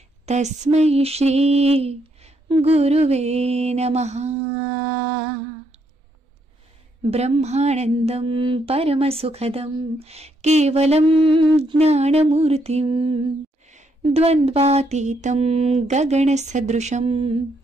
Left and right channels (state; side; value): normal; both; correlation 0.75